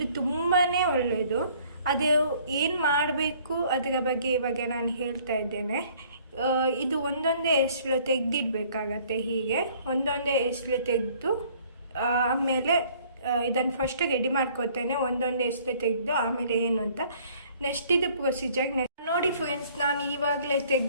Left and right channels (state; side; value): inverted; both; correlation -0.58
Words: ತುಂಬಾ ಒಳ್ಳೆಯದು. ಅದು ಏನು ಮಾಡಬೇಕು ಅದರ ಬಗ್ಗೆ ಇವಾಗ ನಾನು ಹೇಳ್ತಾ ಇದ್ದೇನೆ. ಇದು ಒಂದೊಂದೇ ಎಸ್ಳು ತೆಗೆದಿಡ್ಬೇಕಾಗತ್ತೆ. ಹೀಗೆ ಒಂದೊಂದೇ ಎಸ್ಳು ತೆಗೆದು ಆಮೇಲೆ ಇದನ್ನು ಫಸ್ಟ್ ರೆಡಿ ಮಾಡ್ಕೊತೇನೆ. ಒಂದೊಂದೇ ಎಸ್ಳು ತೆಗೆದು ಆಮೇಲೆ ಏನು ಅಂತ ನೆಕ್ಸ್ಟ್ ಇದು ಪ್ರೊಸೀಜರ್. ನೋಡಿ ಫ್ರೆಂಡ್ಸ್, ನಾನು ಇವಾಗಲೇ